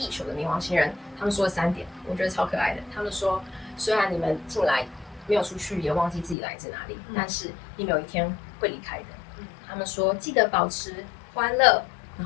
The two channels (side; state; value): right; drops out; at 6.4 s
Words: 球的冥王星人，他们说了3点，我觉得超可爱的。他们说，虽然你们进来没有出去，也忘记自己来自哪里，但是你们有一天会离开的。他们说记得保持欢乐，然